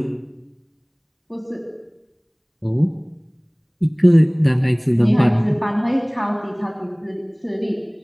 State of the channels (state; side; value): identical; both; correlation 1.00